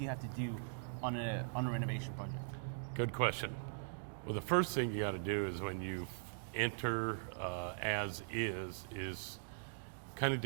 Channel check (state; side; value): silent; left; digital silence